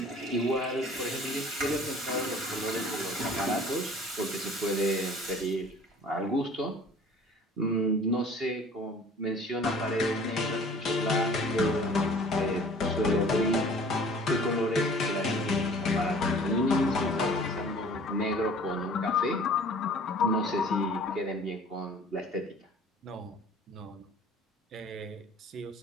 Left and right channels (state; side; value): normal; both; correlation 0.49